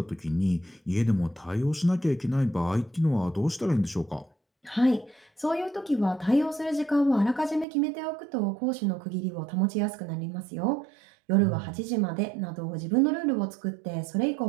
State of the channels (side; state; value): left; drops out; at 7.7 s